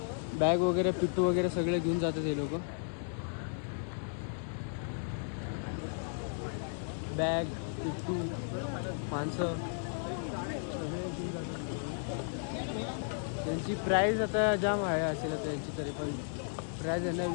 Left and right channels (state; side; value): silent; right; digital silence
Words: बॅग वगैरे पिट्टू वगैरे सगळे घेऊन जातात हे लोक. बॅग पिट्टू माणसं सगळे घेऊन जातात. त्यांची प्राईज आता जाम आहे असेल त्यांची. तरी पण प्राइस यांना